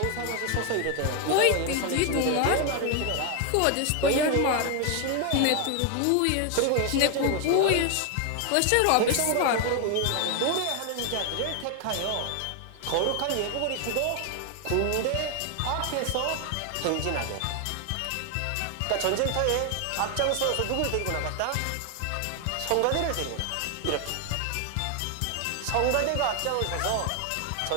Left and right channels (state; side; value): different; both; correlation 0.01